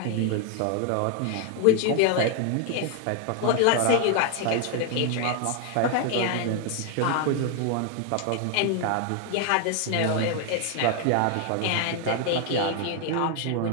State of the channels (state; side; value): different; both; correlation 0.00